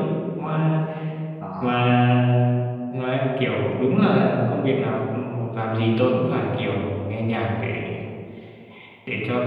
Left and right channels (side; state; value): both; identical; correlation 1.00